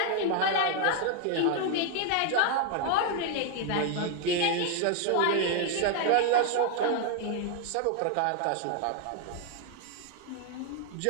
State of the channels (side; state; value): both; different; correlation 0.00